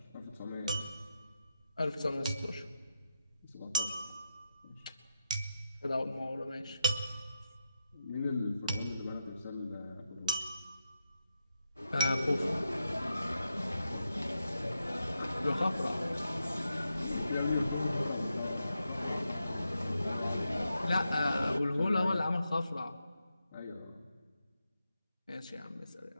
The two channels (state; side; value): inverted; both; correlation -0.87